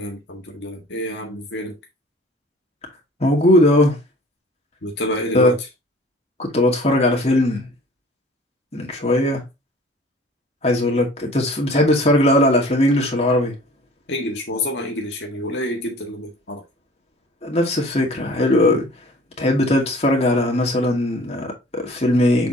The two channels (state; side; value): normal; both; correlation 0.48